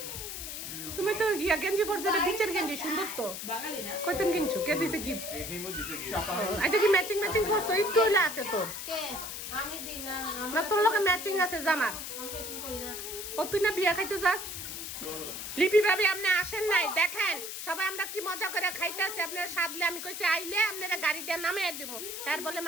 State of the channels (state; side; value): noise; left; hiss, 7 dB below the sound